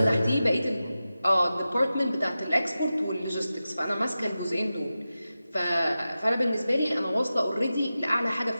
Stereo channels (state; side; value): inverted; both; correlation -0.93